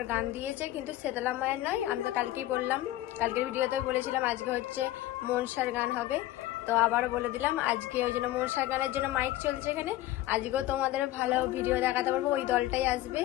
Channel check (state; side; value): quieter; right; 15.4 dB